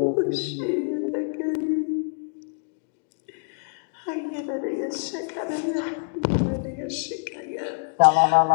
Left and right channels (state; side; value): silent; right; digital silence